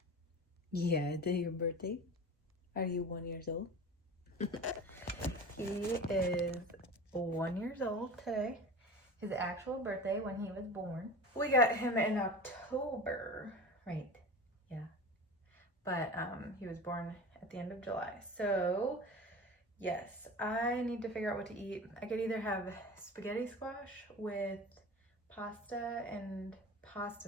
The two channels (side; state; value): both; normal; correlation 0.33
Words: Yeah, is it your birthday? Are you 1 year old? He is 1 year old today. His actual birthday when he was born. We got him in October, right? Yeah. But he was born at the end of July. So yes, I need to figure out what to eat. I could either have spaghetti squash with pasta and pasta